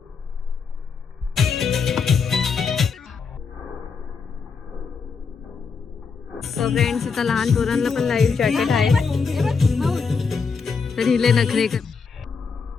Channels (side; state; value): right; quieter; 5.4 dB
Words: सो फ्रेंड्स, इथं लहान पोरांना पण लाईव्ह जॅकेट आहे. तर हिले नखरे कर.